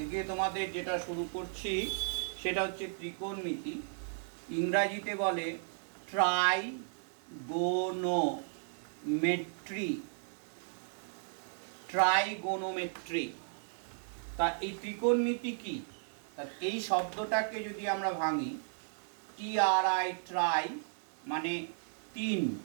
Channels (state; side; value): silent; left; 54 dB below the other